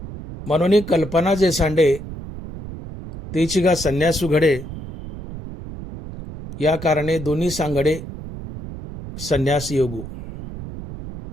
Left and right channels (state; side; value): noise; right; rumble, 11 dB below the sound